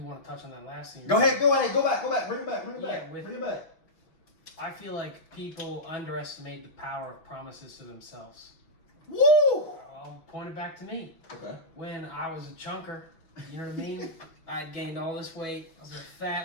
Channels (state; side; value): late; right; 6.1 ms